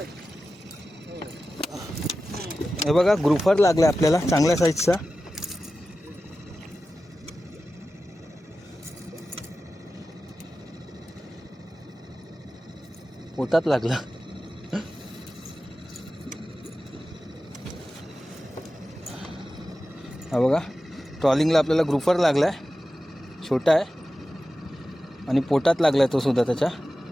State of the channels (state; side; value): normal; both; correlation 0.94